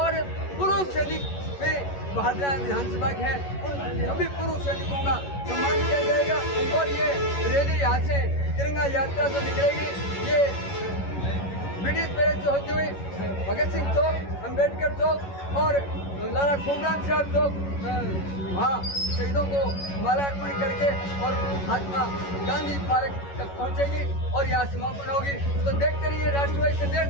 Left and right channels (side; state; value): right; late; 11 ms